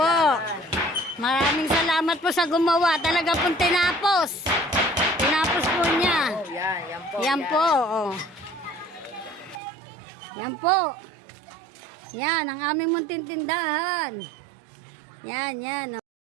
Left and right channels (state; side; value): drops out; left; at 9.6 s